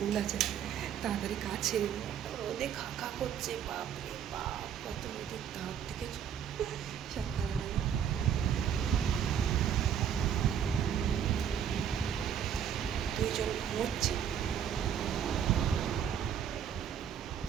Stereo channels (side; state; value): left; quieter; 8.7 dB